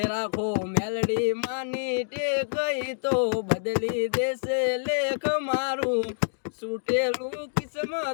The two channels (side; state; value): right; silent; digital silence